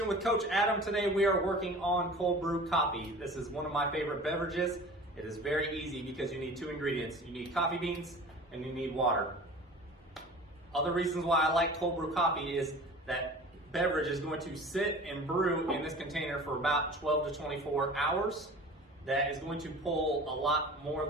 with Coach Adam. Today we are working on cold brew coffee. This is one of my favorite beverages. It is very easy because you need two ingredients. You need coffee beans and you need water. Other reasons why I like cold brew coffee is that beverage is going to sit and brew in this container for about 12 to 24 hours. That is going to pull a lot more of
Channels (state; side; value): normal; both; correlation 0.40